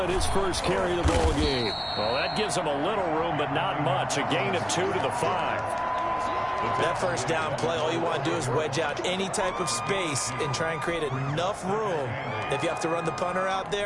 his first carry of the ball game. Well, that gives him a little room, but not much. A gain of 2 to the 5. That first down play, all you want to do is wedge out any type of space and try and create enough room. If you have to run the punter out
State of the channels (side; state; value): both; identical; correlation 1.00